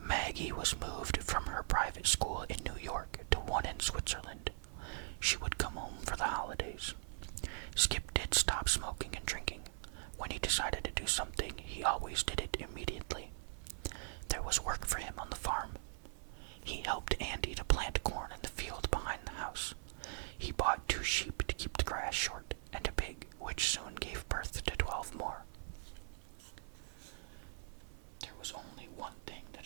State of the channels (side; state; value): left; silent; 51 dB below the other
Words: Maggie was moved from her private school in New York to one in Switzerland. She would come home for the holidays. Skip did stop smoking and drinking. When he decided to do something, he always did it immediately. There was work for him on the farm. He helped Andy to plant corn in the field behind the house. He bought 2 sheep to keep the grass short, and a pig, which soon gave birth to 12 more. There was only one thing